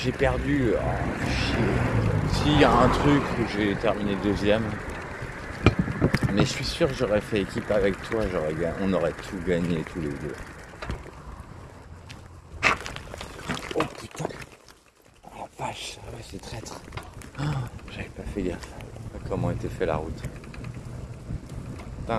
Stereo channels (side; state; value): both; identical; correlation 1.00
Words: perdu. Oh, chier. S'il y a un truc où j'ai terminé deuxième, mais je suis sûr que j'aurais fait équipe avec toi, on aurait tout gagné tous les deux. Oh putain. Oh la vache, ah ouais, c'est traître. Oh, j'avais pas fait gaffe à comment était fait la route.